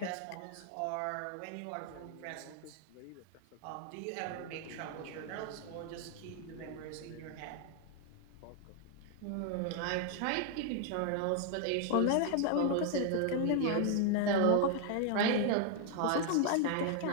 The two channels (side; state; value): both; different; correlation 0.00